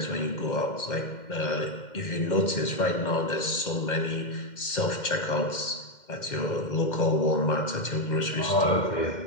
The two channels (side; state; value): right; late; 2.1 ms